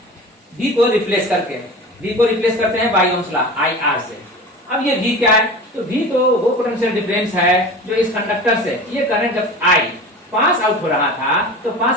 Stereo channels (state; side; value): normal; both; correlation 0.34